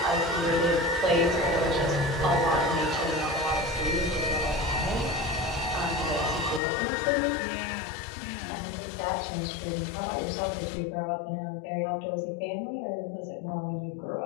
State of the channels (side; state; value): right; drops out; at 6.6 s